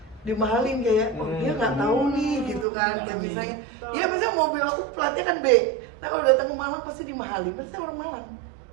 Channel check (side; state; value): left; drops out; at 2.7 s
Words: dimahalin kayak, oh dia nggak tahu nih gitu kan. Kayak misalnya, ya misalnya mobil aku platnya kan B. Nah kalau datang ke Malang pasti dimahalin, pasti orang Malang.